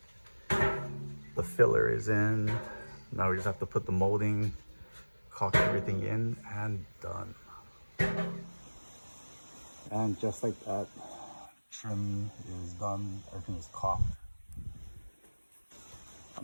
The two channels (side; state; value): both; inverted; correlation -1.00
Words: the filler is in. Now we just have to put the molding, caulk everything in, and done. And just like that, trim is done, everything is caulked.